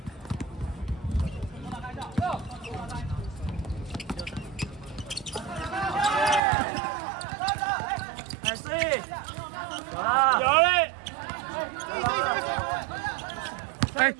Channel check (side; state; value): left; drops out; at 6.4 s